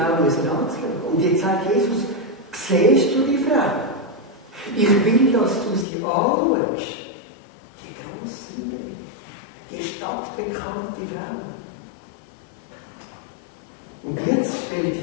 anzuschauen. Und jetzt sagt Jesus, siehst du die Frau? Ich will, dass du sie anschaust. Die grosse, die stadtbekannte Frau. Und jetzt stellt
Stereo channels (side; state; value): right; drops out; at 5.9 s